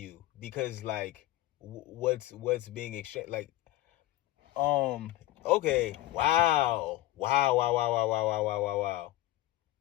because like what's being exchanged, like, okay, wow.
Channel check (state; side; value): quieter; right; 16.2 dB